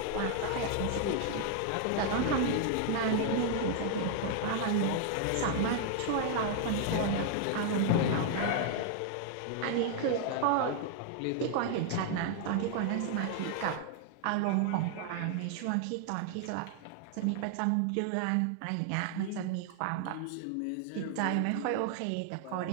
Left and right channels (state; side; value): different; both; correlation 0.00